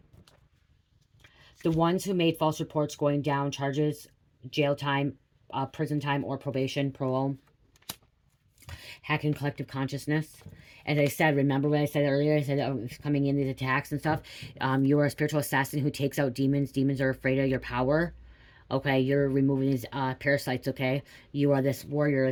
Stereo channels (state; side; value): identical; both; correlation 1.00